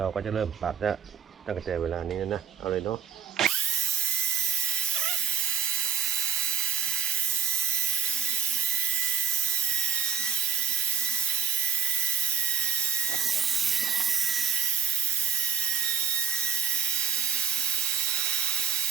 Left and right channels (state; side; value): quieter; left; 7.7 dB